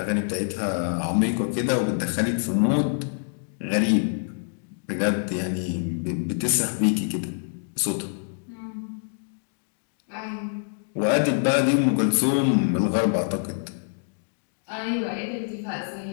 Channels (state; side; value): silent; right; digital silence